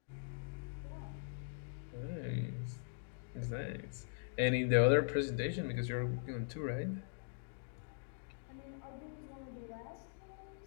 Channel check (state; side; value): silent; right; digital silence